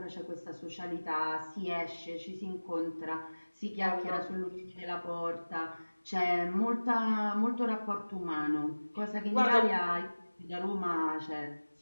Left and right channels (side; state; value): both; inverted; correlation -1.00